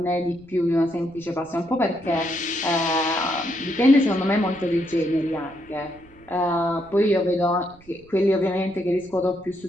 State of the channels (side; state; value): right; noise; rumble, 26 dB below the sound